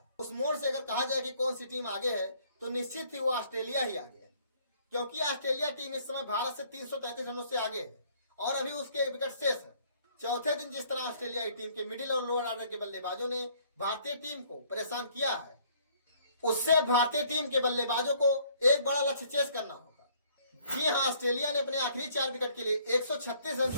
उस मोड़ से अगर कहा जाए कि कौन सी टीम आगे है तो निश्चित ही वो ऑस्ट्रेलिया ही आगे है, क्योंकि ऑस्ट्रेलिया टीम इस समय भारत से 333 रनों से आगे है और अभी उसके एक विकेट शेष है। चौथे दिन जिस तरह ऑस्ट्रेलियाई टीम के मिडिल और लोअर ऑर्डर के बल्लेबाजों ने भारतीय टीम को परेशान किया है, उससे भारतीय टीम के बल्लेबाजों को एक बड़ा लक्ष्य चेस करना होगा। जी हाँ, ऑस्ट्रेलिया ने अपने आखिरी 4 विकेट के लिए 136 रन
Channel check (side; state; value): both; inverted; correlation -0.61